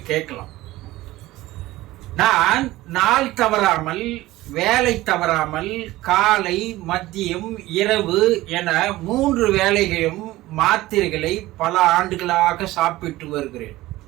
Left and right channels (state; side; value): quieter; left; 17.5 dB